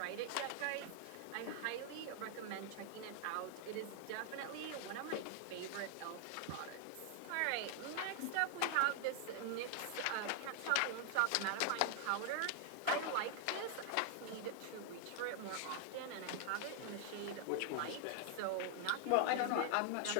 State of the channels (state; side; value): different; both; correlation 0.00